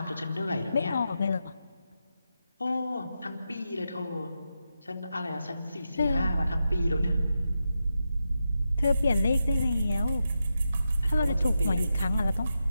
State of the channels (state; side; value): inverted; both; correlation -0.87